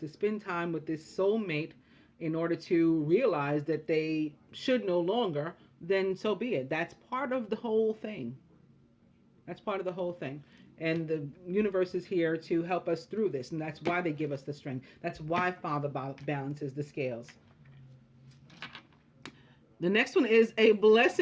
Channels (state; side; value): identical; both; correlation 1.00